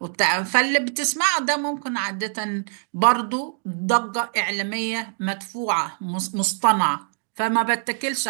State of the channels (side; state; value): left; silent; 63 dB below the other